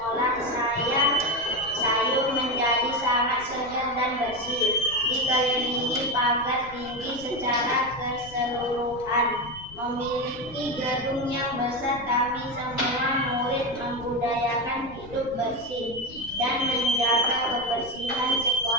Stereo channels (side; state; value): left; noise; rumble, 19 dB below the sound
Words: saya sayur menjadi sangat segar dan bersih. Dikelilingi pagar tinggi secara keseluruhan. Memiliki gedung yang besar, kami semua murid membudayakan hidup bersih dan menjaga kebersihan